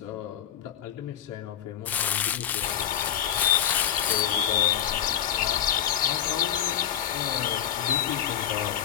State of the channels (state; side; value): quieter; right; 10.1 dB